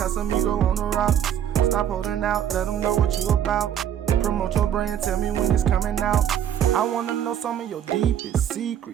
on the rocks. Stop holding out, let them know what you about. Promote your brand, tell me when it's coming out. I wanna know some of your deepest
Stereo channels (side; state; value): left; quieter; 9.8 dB